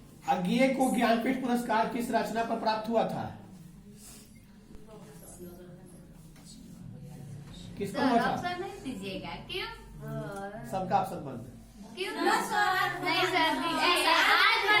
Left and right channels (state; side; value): identical; both; correlation 1.00